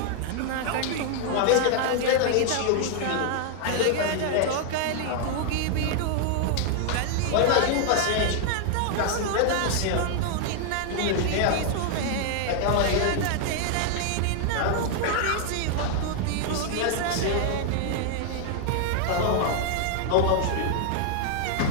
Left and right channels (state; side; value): different; both; correlation 0.00